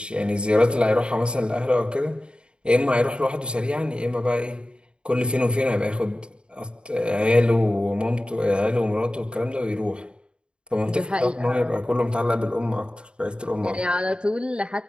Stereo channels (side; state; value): left; late; 0.052 ms